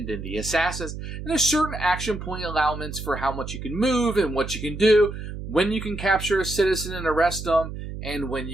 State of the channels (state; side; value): noise; right; hum, 8 dB below the sound